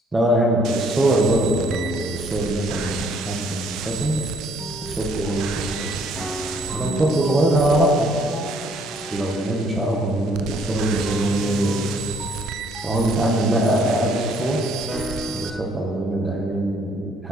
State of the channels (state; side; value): normal; both; correlation 0.64